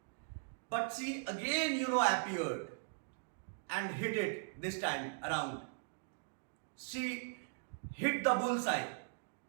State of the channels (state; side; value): silent; left; digital silence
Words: but she again appeared and hit it this time around. She hit the bullseye